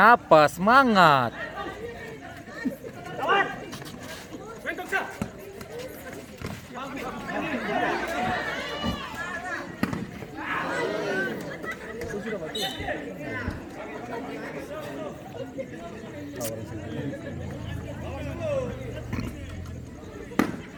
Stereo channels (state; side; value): identical; both; correlation 1.00